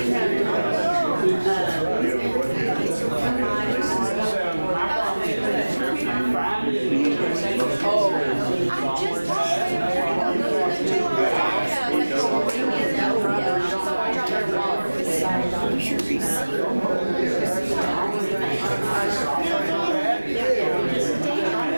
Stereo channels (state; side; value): inverted; both; correlation -1.00